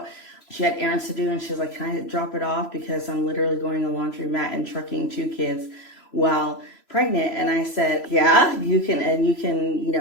She had errands to do, and she was like, can I drop it off? Because I'm literally going to laundromat and trucking 2 kids while pregnant. And I said, yeah, you can. And you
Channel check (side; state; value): right; late; 3.0 ms